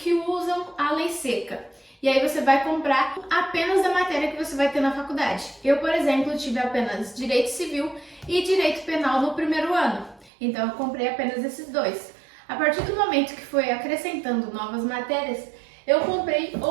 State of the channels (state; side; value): drops out; left; at 10.3 s